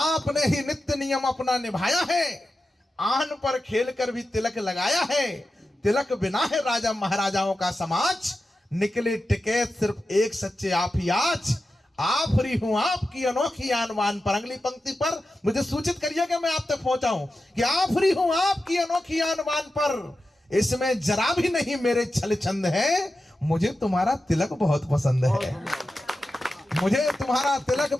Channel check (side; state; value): both; normal; correlation 0.92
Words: ही नित्य नियम अपना निभाया है, आन पर खेल कर भी तिलक लगाया है। तिलक बिना है राजा महाराजाओं का समाज, निकले टिकैत सिर्फ एक सच्चे आप ही आज। आफरी हूं आपकी अनोखी आनवान पर। अगली पंक्ति पर मुझे सूचित करिए कि मैं आप तक पहुंचाऊं कि आफरी हूं आपकी अनोखी आनवान पर, इसमें जरा भी नहीं मेरे छल छंद है। मुझे तुम्हारा तिलक बहुत पसंद है, मुझे तुम्हारा तिलक